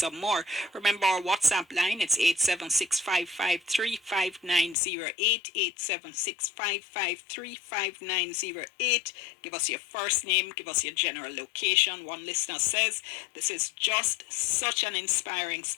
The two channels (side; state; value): right; drops out; at 4.8 s